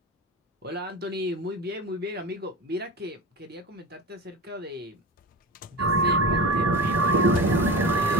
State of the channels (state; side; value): normal; both; correlation 0.28